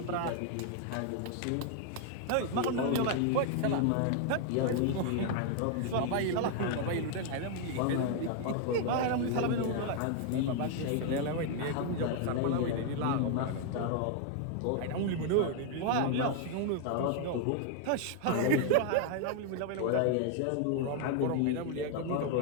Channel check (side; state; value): both; different; correlation 0.00